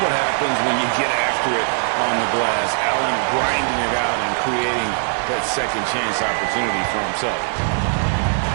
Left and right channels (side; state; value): left; silent; 59 dB below the other